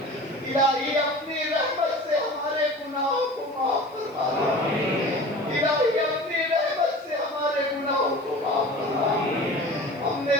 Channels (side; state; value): right; noise; hiss, 29 dB below the sound